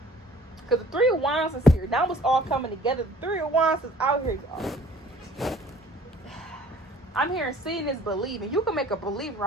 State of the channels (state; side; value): normal; both; correlation 0.53